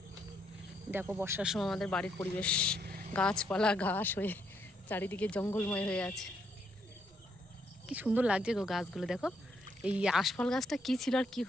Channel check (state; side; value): normal; both; correlation 0.74